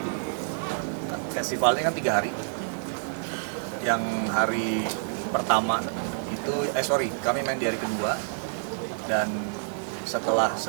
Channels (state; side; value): silent; left; digital silence